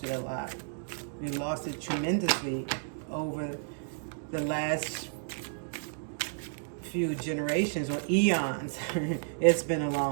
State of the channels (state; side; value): silent; left; digital silence